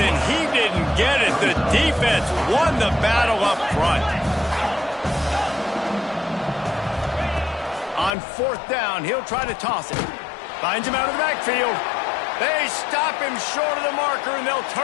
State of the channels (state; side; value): drops out; right; at 8.1 s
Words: he didn't get it. The defense won the battle up front. On fourth down, he'll try to toss it. Finds him out of the backfield. They stop him short of the marker, and they'll